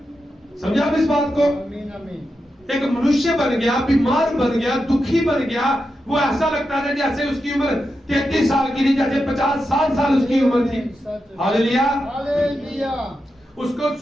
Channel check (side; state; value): both; normal; correlation 0.88